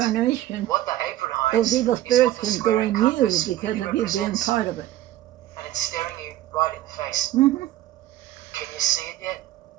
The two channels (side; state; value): left; quieter; 14.0 dB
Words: what the apron Those hides evil is spirits what the can go square in you compass because really of you being represents, part of it. and it's staring you right in the face. Mm-hmm. Can you see it yet?